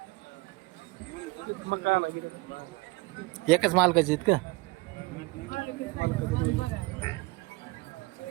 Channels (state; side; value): quieter; left; 23.8 dB